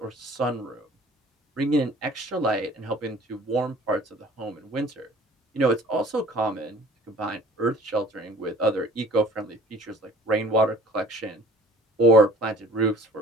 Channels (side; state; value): both; normal; correlation 0.50